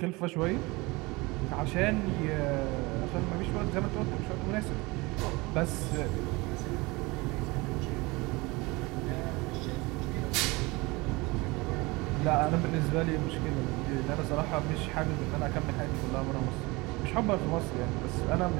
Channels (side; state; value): left; quieter; 23.7 dB